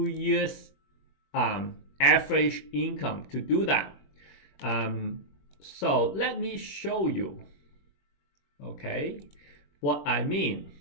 years average income to do that. So let me show you, okay, what I mean.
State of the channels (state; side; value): late; right; 21 ms